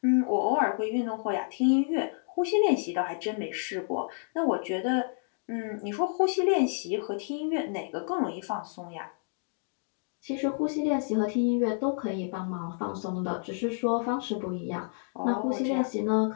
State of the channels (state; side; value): silent; right; 58 dB below the other